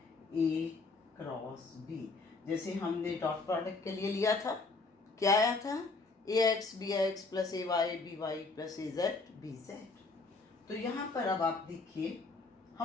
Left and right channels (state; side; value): quieter; right; 3.8 dB